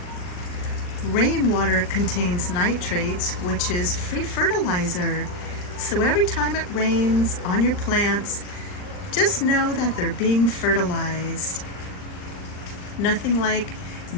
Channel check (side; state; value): right; late; 39 ms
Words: Rainwater contains nitrates, which is free fertilizer. So every time it rains on your plants, just know that they're being fertilized. Nothing like